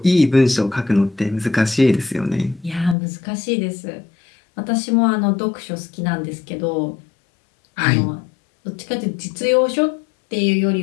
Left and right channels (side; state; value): right; drops out; at 3.0 s